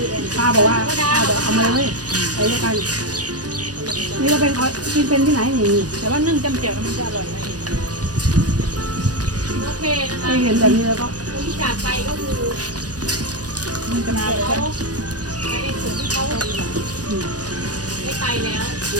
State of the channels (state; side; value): late; left; 0.68 ms